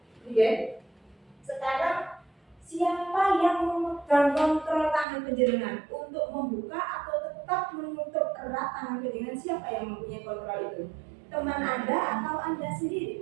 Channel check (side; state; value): left; drops out; at 5.1 s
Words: oke. Sekarang siapa penjenengan untuk membuka atau tetap menutup erat tangan penjenengan? Siapa yang mempunyai kontrol itu? Teman Anda atau Anda